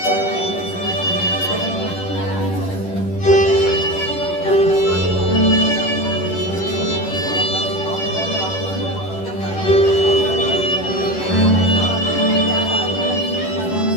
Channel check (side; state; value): right; late; 11 ms